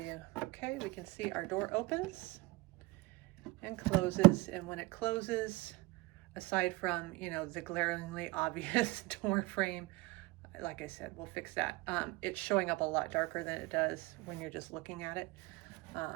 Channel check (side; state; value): left; quieter; 22.1 dB